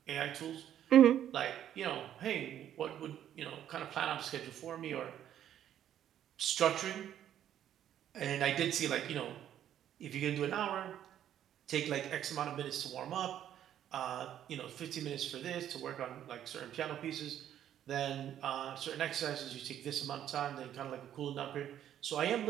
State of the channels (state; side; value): quieter; left; 10.7 dB